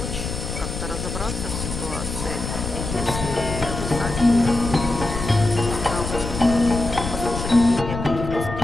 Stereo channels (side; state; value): left; noise; rumble, 6 dB below the sound